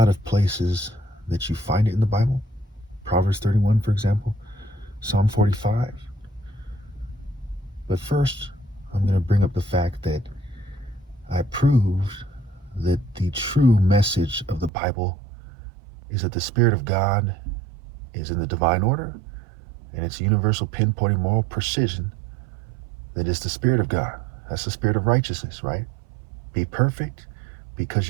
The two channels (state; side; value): drops out; left; at 14.7 s